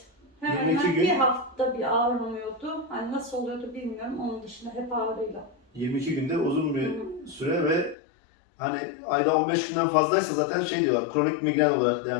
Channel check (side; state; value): right; drops out; at 8.0 s